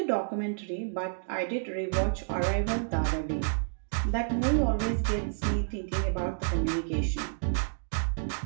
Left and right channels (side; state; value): left; silent; digital silence